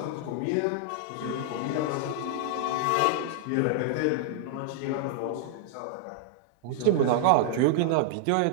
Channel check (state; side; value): different; both; correlation -0.01